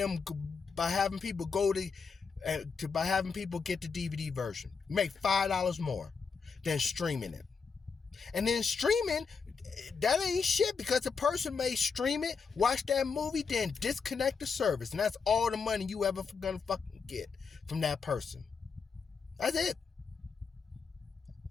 by having people get the DVD version. You make $5 more than streaming it. And then streaming, that ain't shit, because the person may stream it, watch that movie, then disconnect the service. And that's all the money you ever gonna fucking get from that person. That's it.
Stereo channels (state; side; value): quieter; right; 5.4 dB